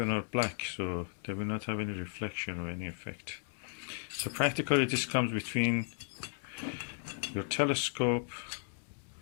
are black, so they will not have any reflection or any effect. So practically this comes between your telescope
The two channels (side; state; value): right; silent; digital silence